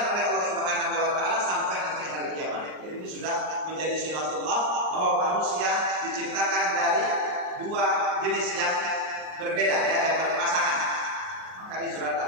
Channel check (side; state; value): left; late; 38 ms